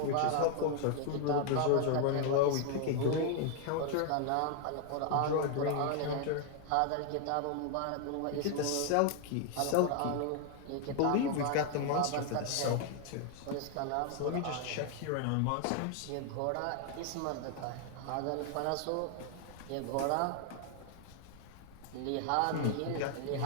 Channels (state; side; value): different; both; correlation 0.00